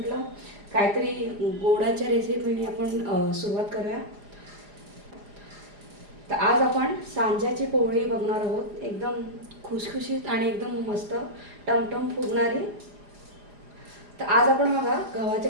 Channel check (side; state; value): left; late; 4.9 ms